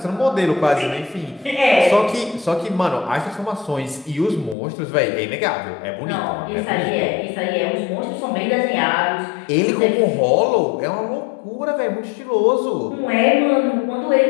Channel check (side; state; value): right; drops out; at 4.5 s